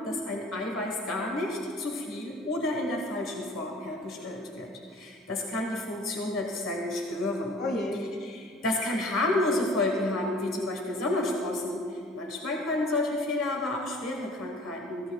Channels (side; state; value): both; normal; correlation 0.49